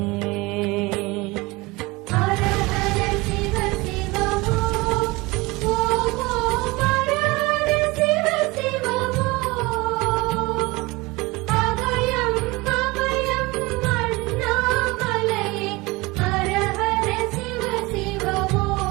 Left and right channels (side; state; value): left; quieter; 23.1 dB